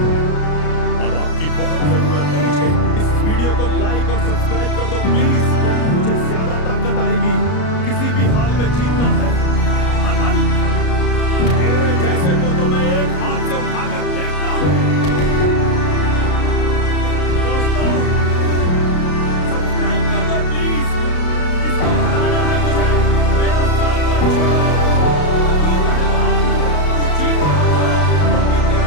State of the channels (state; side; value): late; right; 33 ms